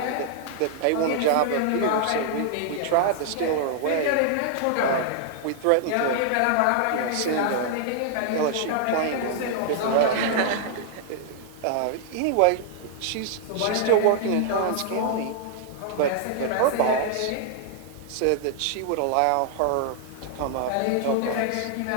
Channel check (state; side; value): different; both; correlation -0.01